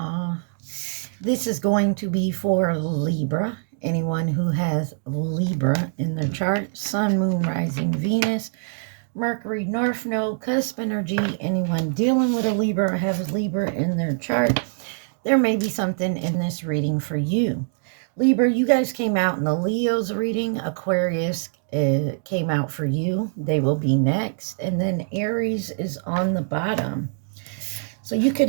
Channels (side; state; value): left; silent; digital silence